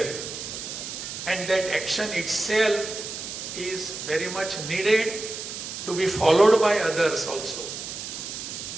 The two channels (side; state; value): right; noise; hiss, 8 dB below the sound